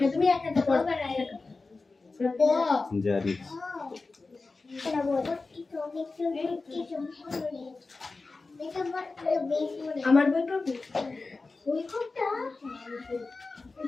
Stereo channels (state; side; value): quieter; right; 3.7 dB